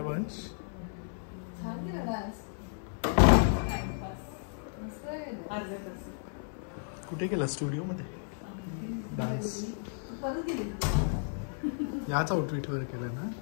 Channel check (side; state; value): right; silent; 55 dB below the other